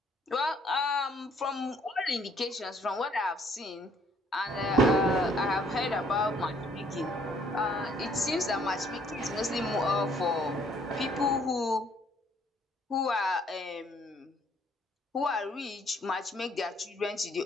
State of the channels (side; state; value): both; normal; correlation 0.63